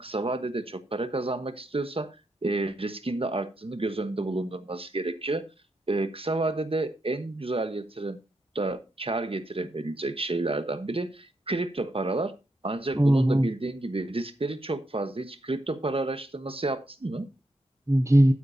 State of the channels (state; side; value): normal; both; correlation 0.82